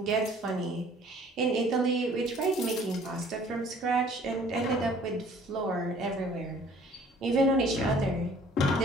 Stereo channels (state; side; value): normal; both; correlation 0.54